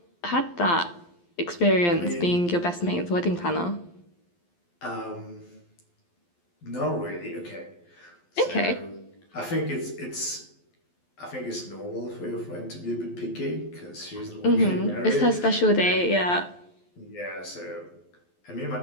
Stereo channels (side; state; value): right; late; 12 ms